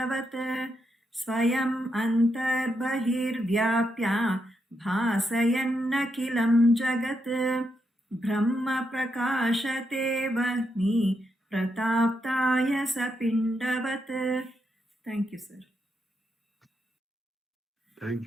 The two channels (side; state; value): both; normal; correlation 0.82